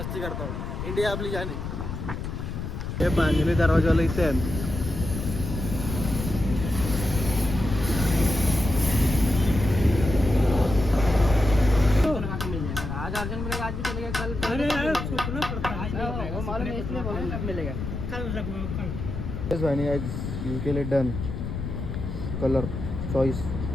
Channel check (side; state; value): left; noise; rumble, 5 dB below the sound